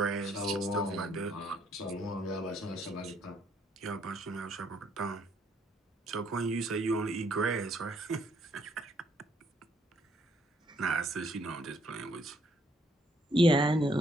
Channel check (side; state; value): both; normal; correlation 0.68